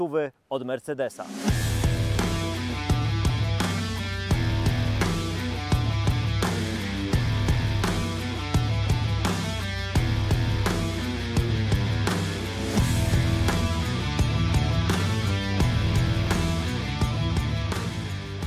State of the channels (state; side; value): identical; both; correlation 1.00